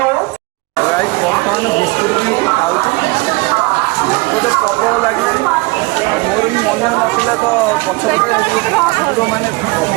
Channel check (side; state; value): left; quieter; 24.2 dB